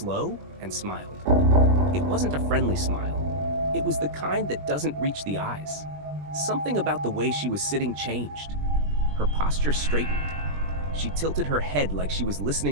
and smiled. It wasn't a friendly smile. It was the kind that doesn't reach the eyes. Something about the way she was sitting changed. Her posture straightened. She tilted her head like she was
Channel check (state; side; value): late; left; 20 ms